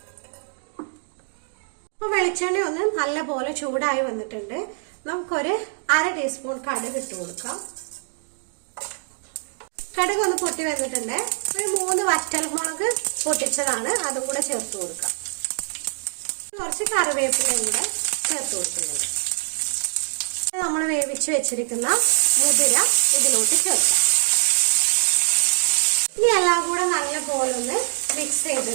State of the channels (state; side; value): silent; left; 63 dB below the other